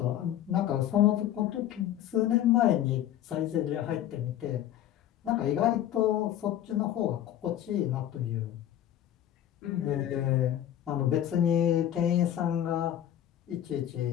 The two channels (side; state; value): right; quieter; 11.5 dB